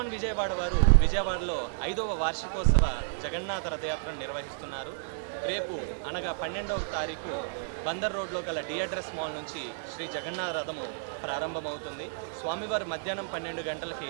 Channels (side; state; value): left; silent; digital silence